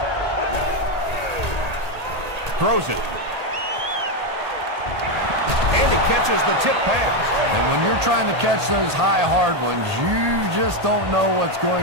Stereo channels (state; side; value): late; left; 1.8 ms